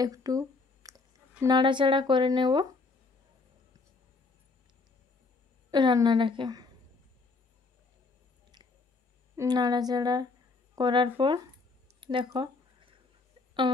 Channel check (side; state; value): right; quieter; 3.9 dB